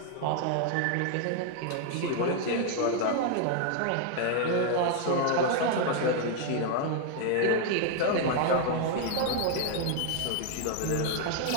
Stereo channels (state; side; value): different; both; correlation 0.00